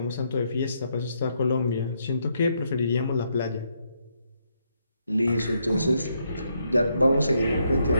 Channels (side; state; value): both; inverted; correlation -0.77